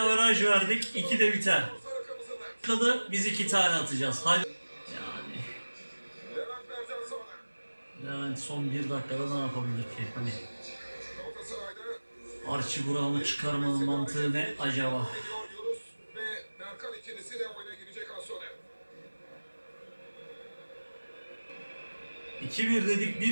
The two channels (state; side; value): inverted; both; correlation -1.00